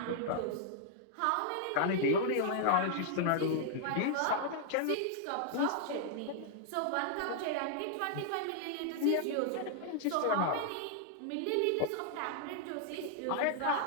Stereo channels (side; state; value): both; different; correlation -0.01